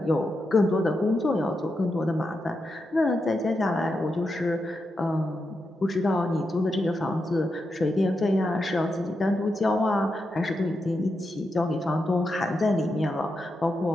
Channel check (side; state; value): both; normal; correlation 0.86